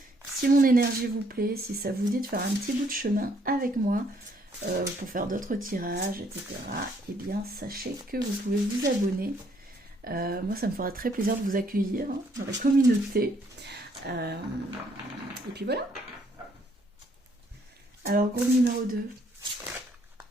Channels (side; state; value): both; normal; correlation 0.67